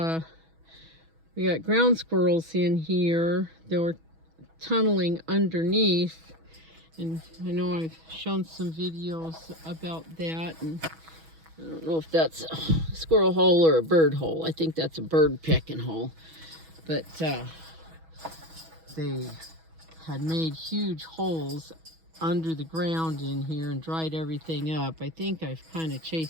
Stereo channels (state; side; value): late; left; 6.2 ms